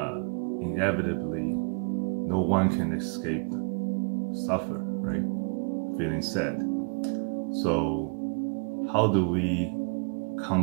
inevitably, no one can escape suffer, right? Feeling sad. So how do we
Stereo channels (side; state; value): left; quieter; 37.2 dB